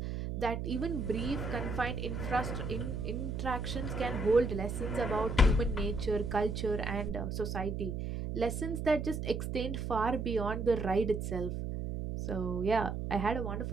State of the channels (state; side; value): noise; right; hum, 3 dB below the sound